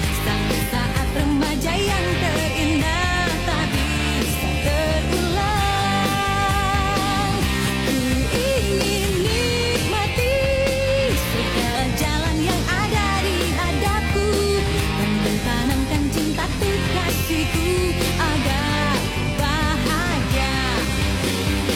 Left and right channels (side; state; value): both; identical; correlation 1.00